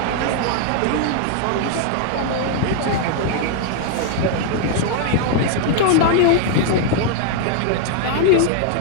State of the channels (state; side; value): different; both; correlation 0.00